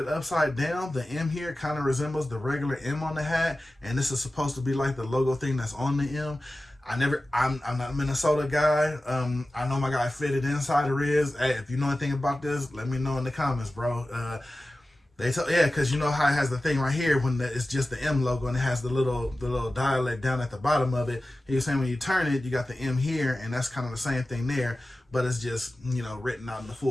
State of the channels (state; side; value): normal; both; correlation 0.95